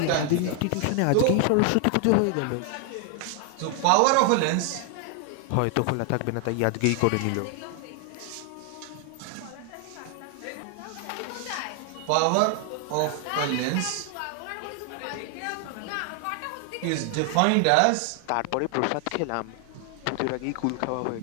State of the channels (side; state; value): both; different; correlation 0.00